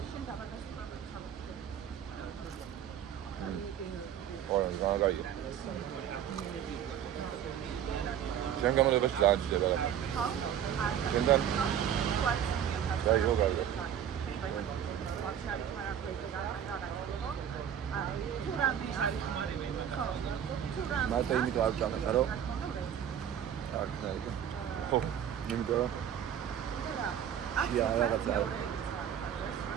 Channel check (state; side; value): quieter; left; 9.4 dB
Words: ორ ზაგაია. ჩვენ გამოდევაში ძალიან ძდება რა. ჩვენთან და იოგა. მარტო იმიტომ არ ვჭამეთ, რომ არ ქნაიგა. ხო, იმიტომ რომ შია რაღაცა